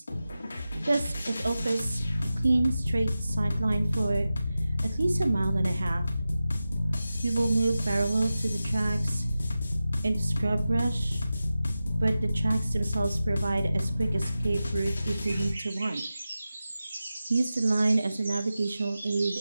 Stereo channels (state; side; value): inverted; both; correlation -0.93